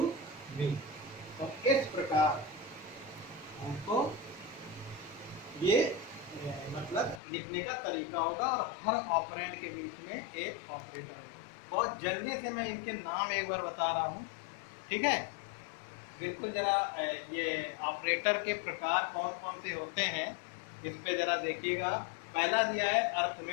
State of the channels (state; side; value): drops out; right; at 7.2 s